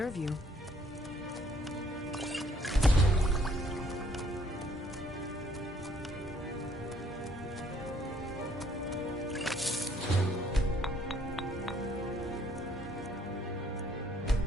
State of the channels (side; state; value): both; normal; correlation 0.64